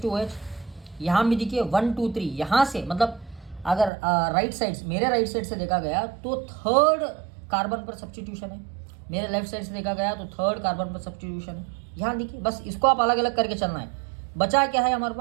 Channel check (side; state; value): left; drops out; at 3.9 s